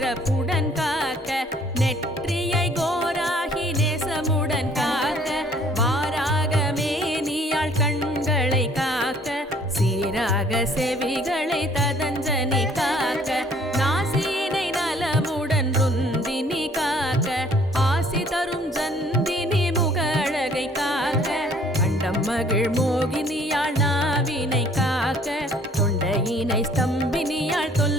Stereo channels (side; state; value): both; normal; correlation 0.58